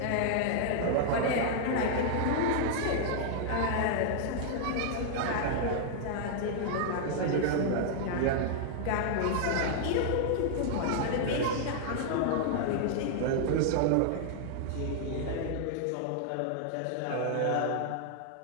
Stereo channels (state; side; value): different; both; correlation -0.01